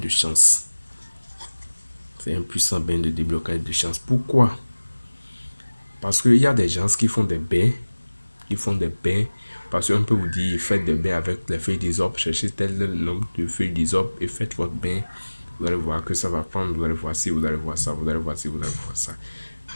chance. C'est un puissant bain de déblocage et de chance. Pourquoi? Parce qu'il y a des gens qui font des bains. Ils font des bains. Parce qu'on peut vous dire, faites des bains avec les feuilles d'hysope. Cherchez tel nombre de feuilles d'hysope et faites votre bain. Vous allez voir que ça va prendre. Vous allez voir ci, vous allez voir ça, vous allez voir ci, vous allez voir ça.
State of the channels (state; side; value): inverted; both; correlation -1.00